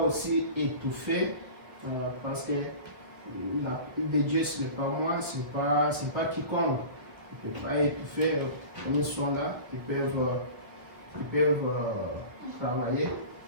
étouffer parce que la pluie de Dieu, ce n'est pas moi, ce n'est pas quiconque. Ils ne peuvent pas étouffer comme ils sont là. Ils peuvent travailler.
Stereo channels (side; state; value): left; late; 1.1 ms